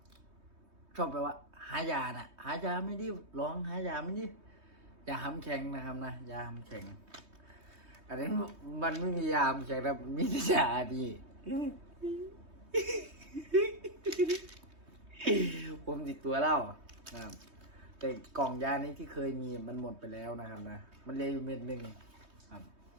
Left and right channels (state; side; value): late; left; 3.2 ms